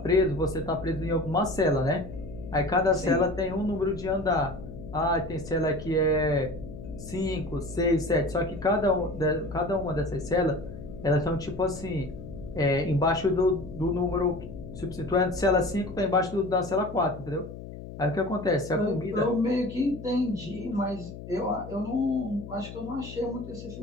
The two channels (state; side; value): noise; left; hum, 12 dB below the sound